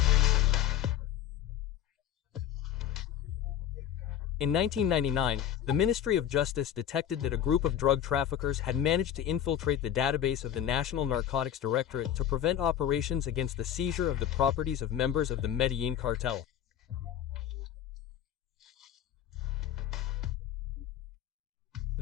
In 1999, the Ministry of Justice detected that a group of drug traffickers had managed to infiltrate the database of the National Narcotics Directorate to prevent operations against the seizure of the properties of members of the Medellín cartel.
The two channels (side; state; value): right; quieter; 10.3 dB